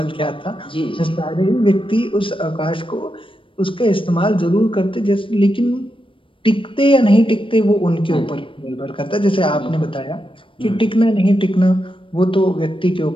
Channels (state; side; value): late; right; 0.25 ms